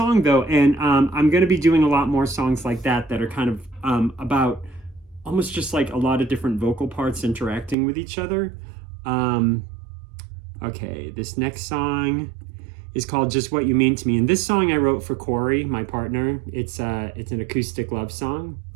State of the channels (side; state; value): left; drops out; at 7.8 s